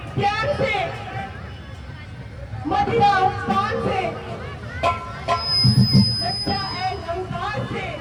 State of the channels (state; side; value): identical; both; correlation 1.00